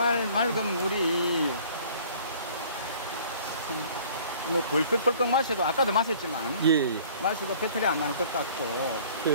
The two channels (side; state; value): both; inverted; correlation -0.52